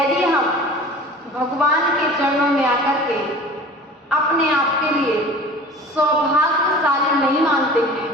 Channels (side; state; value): both; normal; correlation 0.41